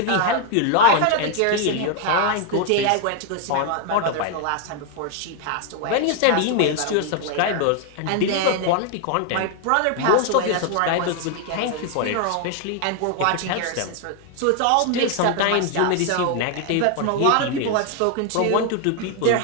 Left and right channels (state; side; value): different; both; correlation 0.00